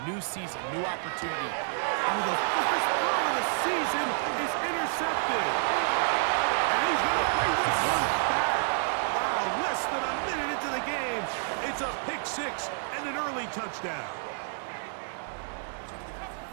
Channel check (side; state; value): left; silent; digital silence